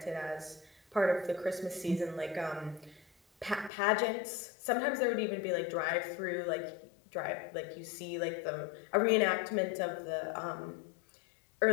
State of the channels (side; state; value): right; drops out; at 3.7 s